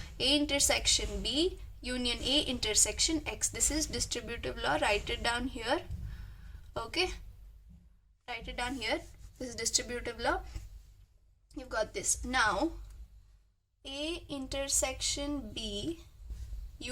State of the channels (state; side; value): identical; both; correlation 1.00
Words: A intersection B union A intersection X. This is distributive law. Write it down here. Okay, write it down here. This is distributive law. You've got this. Now A intersection B